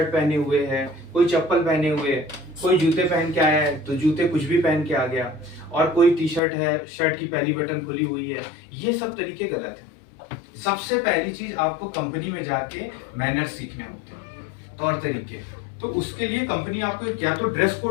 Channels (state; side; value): drops out; right; at 6.4 s